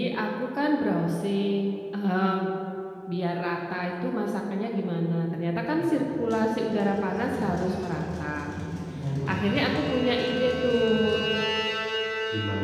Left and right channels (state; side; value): identical; both; correlation 1.00